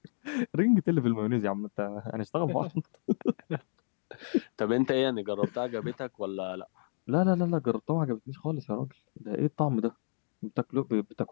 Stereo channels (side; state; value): right; silent; digital silence